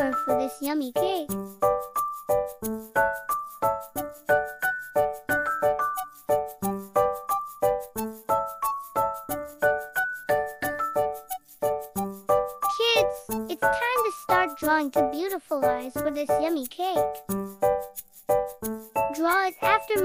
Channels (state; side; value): identical; both; correlation 1.00